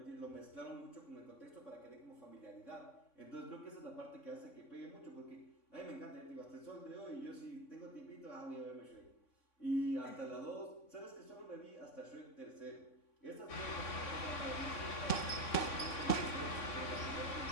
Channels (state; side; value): late; right; 3.6 ms